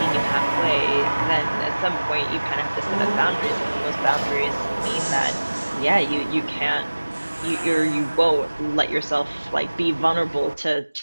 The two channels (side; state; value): both; inverted; correlation -1.00